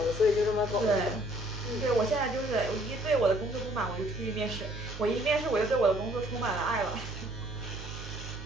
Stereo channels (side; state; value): right; noise; hum, 11 dB below the sound